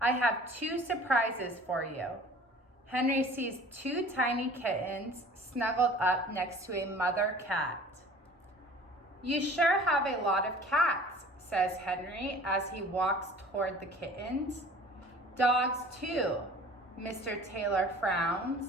have two surprises for you. Henry sees two tiny kittens snuggled up next to a mother cat. You sure have a lot of cats, says Henry as he walks toward the kittens. Dogs too, Mr. Taylor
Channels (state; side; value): normal; both; correlation 0.46